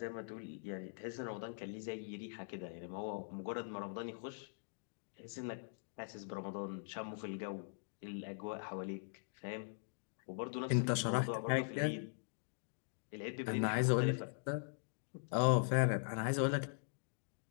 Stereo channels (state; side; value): silent; right; digital silence